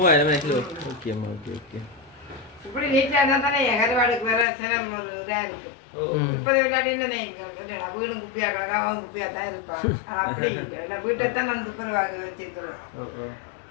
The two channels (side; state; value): right; drops out; at 4.5 s